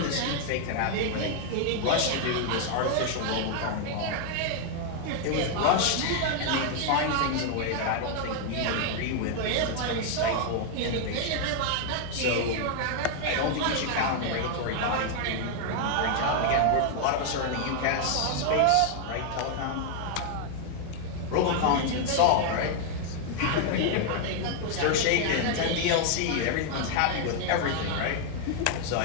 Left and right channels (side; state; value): both; different; correlation 0.00